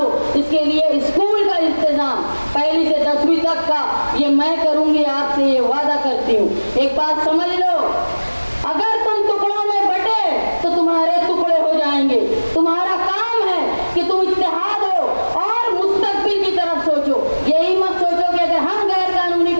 इसके लिए स्कूल का इंतजाम पहली से 10वीं तक का ये मैं करूंगी, आपसे ये वादा करती हूँ। एक बात समझ लो, अगर तुम टुकड़ों में बटे तो तुम्हारे टुकड़े हो जाएंगे। तुम्हारा काम है कि तुम इत्तेहाद हो और मुस्तकबिल की तरफ सोचो। यही मत सोचो कि अगर हम गैर कानूनी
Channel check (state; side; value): inverted; both; correlation -1.00